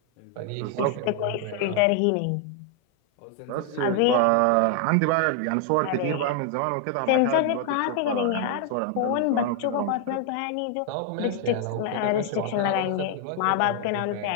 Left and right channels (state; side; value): different; both; correlation 0.00